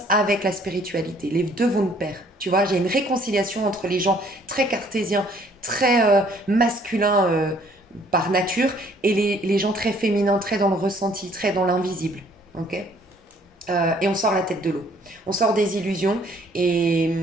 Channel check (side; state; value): both; normal; correlation 0.61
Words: avec la spiritualité. Les deux vont de pair. Tu vois, j'ai une réconciliation entre les gens très cartésiens, très masculins par nature et les gens très féminins, très dans le ressenti, très dans l'invisible. Ok. Et on sort la tête de l'eau. On sort des illusions et